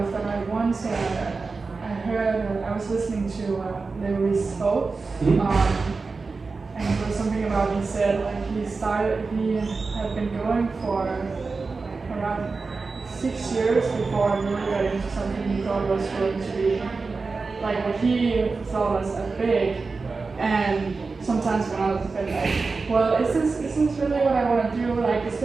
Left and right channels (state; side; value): quieter; left; 4.2 dB